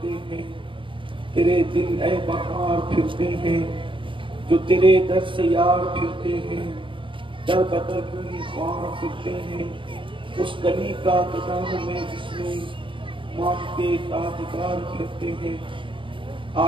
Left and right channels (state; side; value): late; left; 0.25 ms